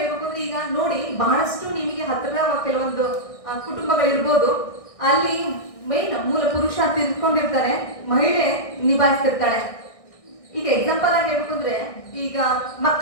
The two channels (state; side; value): late; right; 1.6 ms